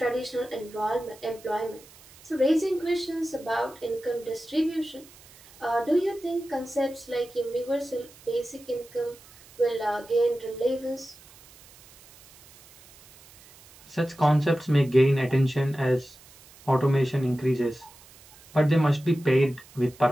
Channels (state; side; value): noise; right; hiss, 24 dB below the sound